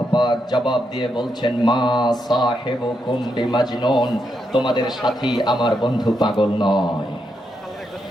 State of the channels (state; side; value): normal; both; correlation 0.82